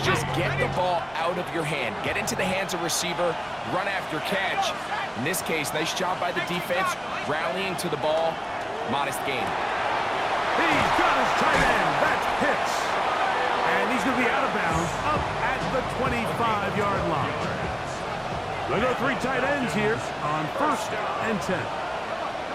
get the ball out of your hand. Get into the hands of receiver, run after catch. In this case, nice job by the defense, rallying to the ball. Modest gain. He's got his tight end. That's Pitts. And he's going to be out of bounds up at the 25-yard line. They go 3 tight ends here on 1st and 10.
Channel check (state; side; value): identical; both; correlation 1.00